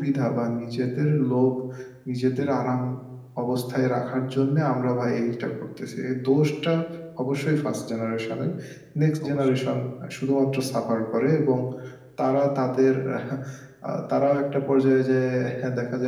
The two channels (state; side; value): identical; both; correlation 1.00